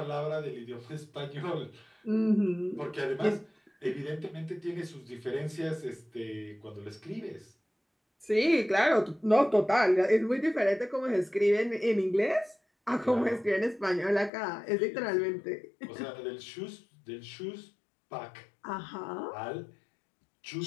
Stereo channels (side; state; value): right; drops out; at 14.3 s